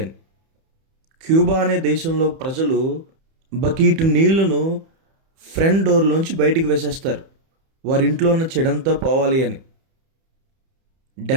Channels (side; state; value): left; late; 31 ms